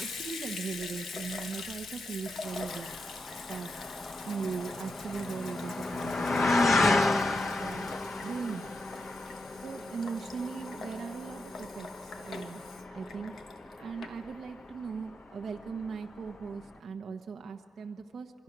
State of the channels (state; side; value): normal; both; correlation 0.85